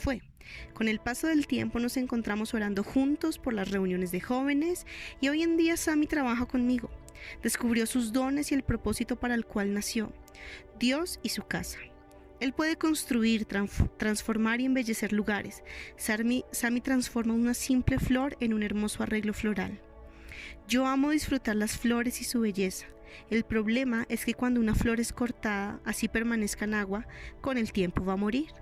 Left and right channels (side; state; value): both; identical; correlation 1.00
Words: Con el paso del tiempo nos encontramos orando juntos por las reuniones de jóvenes y hoy en día Sammy trabaja conmigo. Descubrió sus dones y el propósito para el cual nació, Dios y su casa. Él puede construir, transformar y embellecer lugares. Sammy transforma una simple flor en un hermoso arreglo floral. Yo amo disfrutar las flores y su belleza. El problema es que cuando una flor es cortada, así permanezca en agua, con el tiempo va a morir.